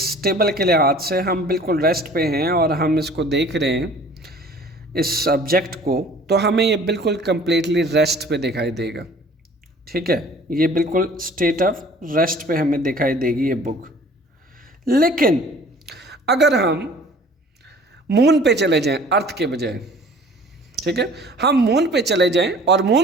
टेबल के लिहाज से हम बिल्कुल रेस्ट पे हैं और हम इसको देख रहे हैं इस ऑब्जेक्ट को, तो हमें ये बिल्कुल कम्प्लीटली रेस्ट पे दिखाई देगा, ठीक है। ये बिल्कुल स्टेट ऑफ रेस्ट पे हमें दिखाई देगी ये बुक। लेकिन अगर हम मून पे चले जाएं अर्थ के बजाय, ठीक है, हम मून पे चले जाएं और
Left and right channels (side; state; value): both; normal; correlation 0.50